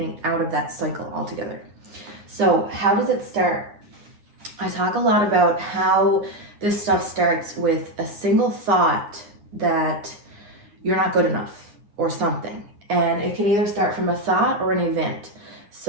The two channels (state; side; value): late; left; 9.7 ms